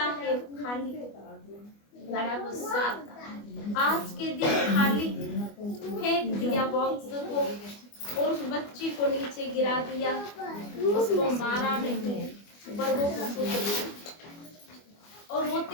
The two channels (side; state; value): right; late; 24 ms